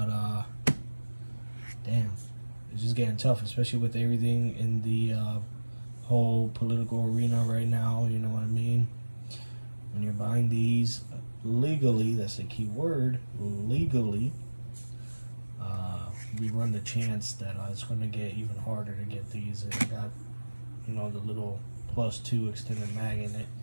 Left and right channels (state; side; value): inverted; both; correlation -1.00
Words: damn, it's just getting tough, especially with everything in the whole political arena right now. You know what I mean? When you're buying these legally, that's the key word, legally, we run the chance that it's going to get even harder to get these. And I got, you know, the little +2 extended mag in it.